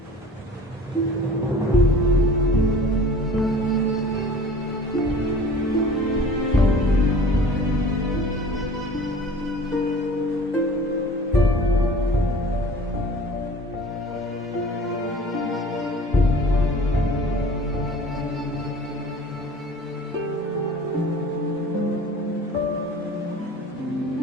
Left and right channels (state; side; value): normal; both; correlation 0.44